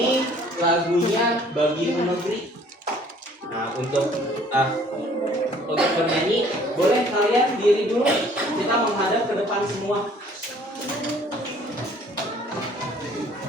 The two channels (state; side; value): normal; both; correlation 0.56